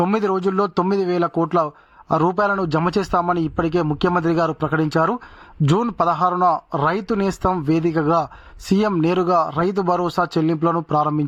9 రోజుల్లో 9,000 కోట్ల రూపాయలను జమ చేస్తామని ఇప్పటికే ముఖ్యమంత్రి గారు ప్రకటించారు. జూన్ 16న రైతు నేస్తం వేదికగా సీఎం నేరుగా రైతు భరోసా చెల్లింపులను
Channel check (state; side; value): identical; both; correlation 1.00